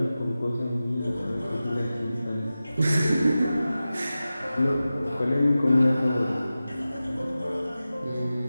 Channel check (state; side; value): inverted; both; correlation -0.95